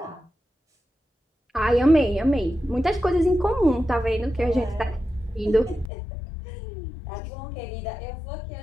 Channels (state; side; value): drops out; right; at 5.9 s